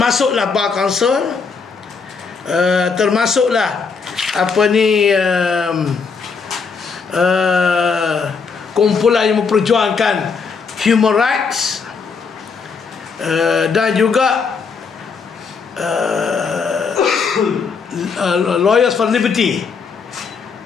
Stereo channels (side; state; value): right; quieter; 5.3 dB